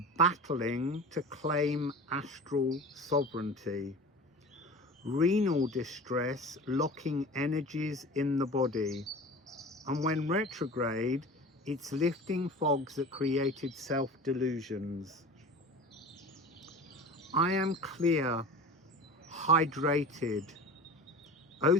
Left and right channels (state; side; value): normal; both; correlation 0.36